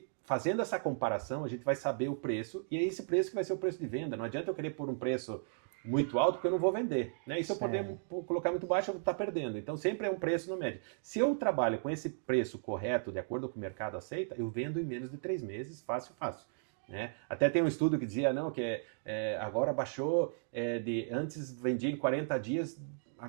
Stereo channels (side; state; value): left; silent; digital silence